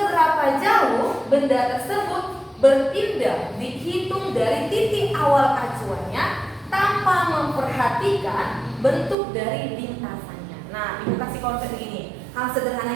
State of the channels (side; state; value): left; drops out; at 9.2 s